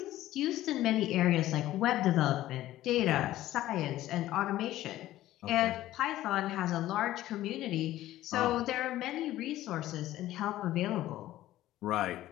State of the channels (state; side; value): quieter; right; 14.6 dB